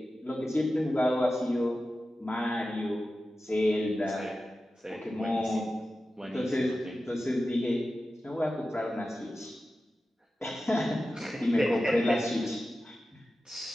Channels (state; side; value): normal; both; correlation 0.93